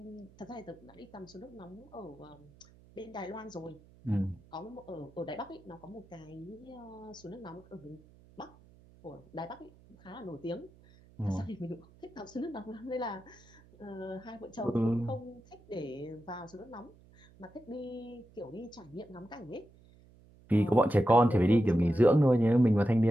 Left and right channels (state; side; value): noise; right; hum, 25 dB below the sound